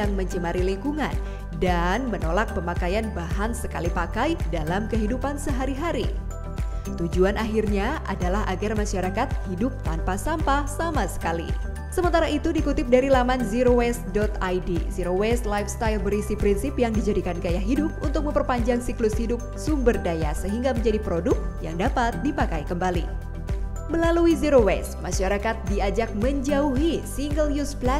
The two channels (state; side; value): identical; both; correlation 1.00